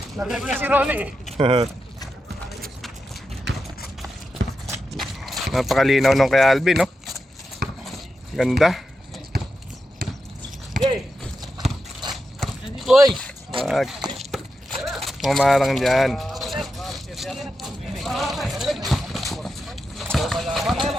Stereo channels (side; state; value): both; normal; correlation 0.88